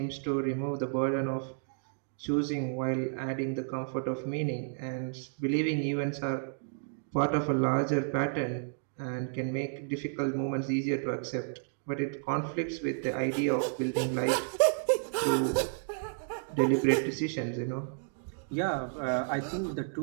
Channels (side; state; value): left; silent; digital silence